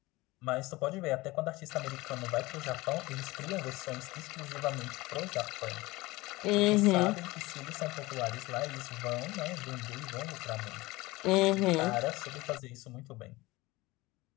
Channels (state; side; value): quieter; right; 20.7 dB